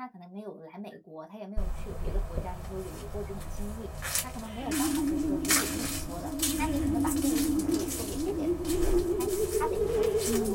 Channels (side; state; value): both; identical; correlation 1.00